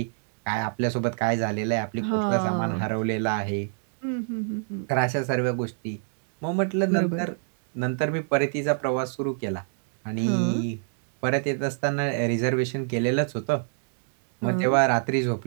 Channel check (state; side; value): silent; left; digital silence